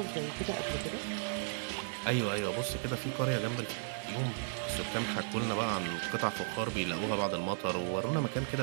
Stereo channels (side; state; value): left; silent; 54 dB below the other